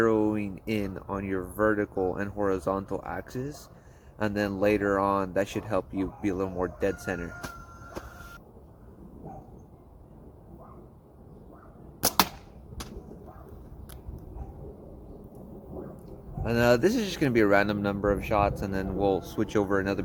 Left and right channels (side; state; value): both; identical; correlation 1.00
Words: in on your vertical and horizontal axis, and then later on that should help you be a little more dead center. And this is just going to be a random number of shots, and then we'll switch over another